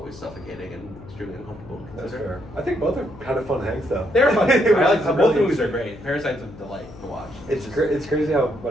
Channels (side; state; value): left; noise; hum, 18 dB below the sound